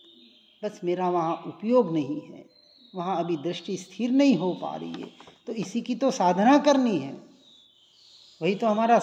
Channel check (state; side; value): identical; both; correlation 1.00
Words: बस मेरा वहां उपयोग नहीं है, वहां अभी दृष्टि स्थिर नहीं हो पा रही है। तो इसी की तो साधना करनी है, वही तो हमारा